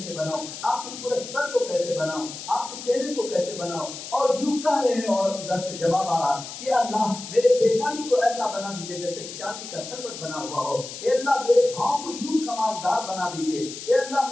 بناؤ، آپ کی پورے سر کو کیسے بناؤ، آپ کے چہرے کو کیسے بناؤ، اور یوں کہہ رہے ہیں اور ادھر سے جواب آ رہا کہ اللہ میرے پیشانی کو ایسا بنا دیجیے جیسے ایک چاندی کا سربٹ بنا ہوا ہو، اے اللہ میرے پاؤں کو یوں کمالدار بنا دیجیے، اے اللہ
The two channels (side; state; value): left; noise; hiss, 11 dB below the sound